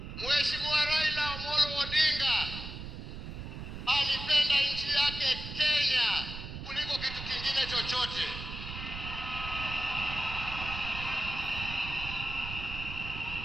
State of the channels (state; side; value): noise; right; rumble, 8 dB below the sound